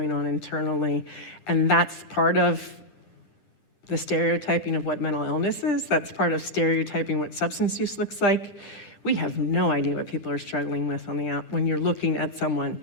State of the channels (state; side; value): late; right; 10 ms